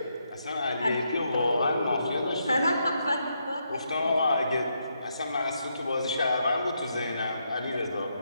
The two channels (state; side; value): inverted; both; correlation -0.79